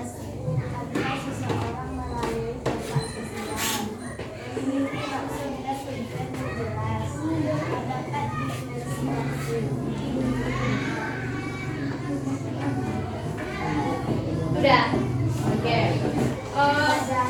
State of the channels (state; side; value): identical; both; correlation 1.00